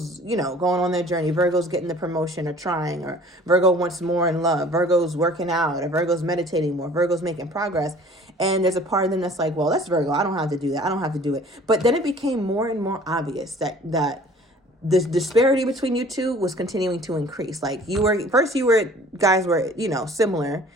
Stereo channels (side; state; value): both; normal; correlation 0.50